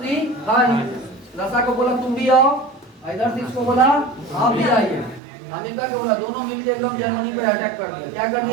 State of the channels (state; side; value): drops out; left; at 5.2 s